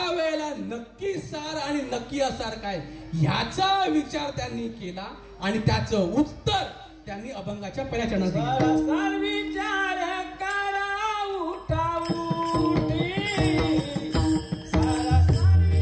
नक्की सार आणि नक्की असार काय ह्याचा विचार त्यांनी केला आणि त्याचं उत्तर त्यांनी अभंगाच्या पहिल्या चरणात दिलं. सार विचार करा उठाऊठी, सारा सार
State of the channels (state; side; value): identical; both; correlation 1.00